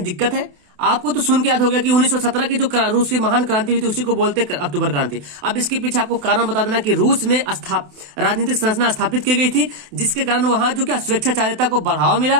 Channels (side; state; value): left; late; 28 ms